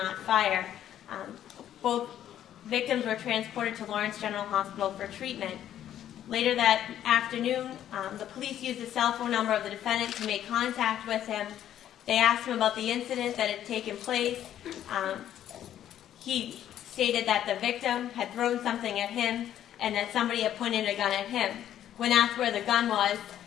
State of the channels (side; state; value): right; quieter; 11.1 dB